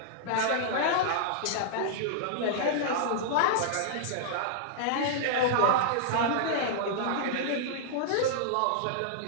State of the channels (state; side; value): different; both; correlation -0.02